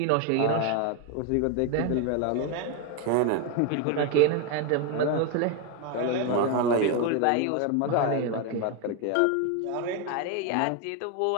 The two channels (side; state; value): both; different; correlation 0.01